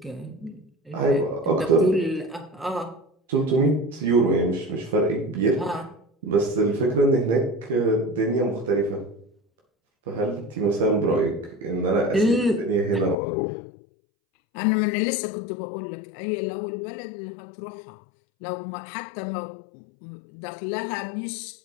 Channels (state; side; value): drops out; right; at 13.2 s